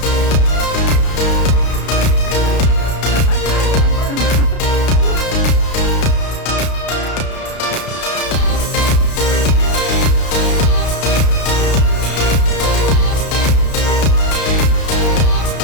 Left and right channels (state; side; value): late; right; 32 ms